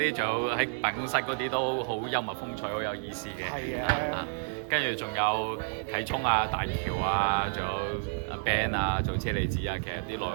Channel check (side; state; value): left; silent; digital silence